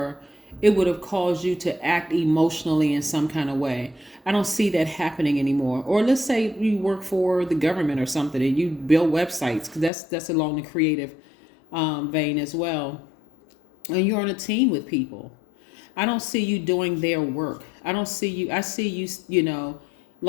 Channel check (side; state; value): right; drops out; at 9.9 s